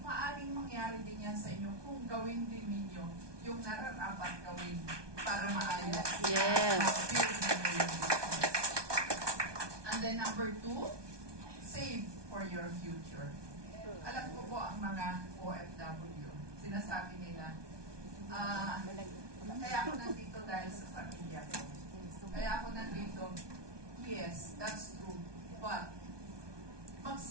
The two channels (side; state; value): left; late; 1.2 ms